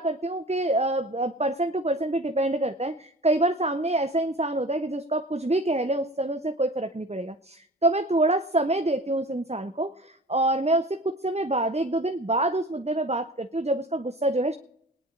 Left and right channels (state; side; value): normal; both; correlation 0.41